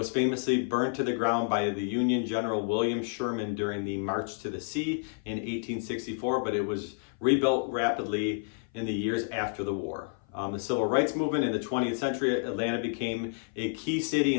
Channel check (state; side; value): silent; right; 57 dB below the other